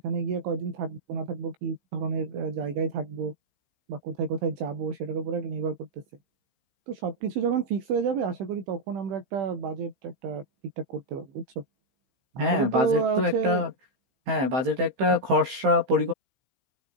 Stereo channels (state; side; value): late; left; 15 ms